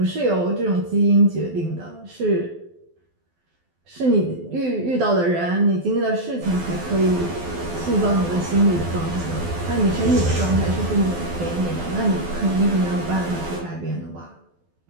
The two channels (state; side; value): late; left; 12 ms